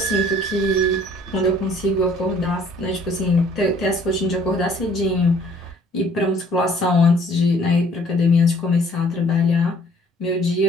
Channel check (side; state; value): both; normal; correlation 0.58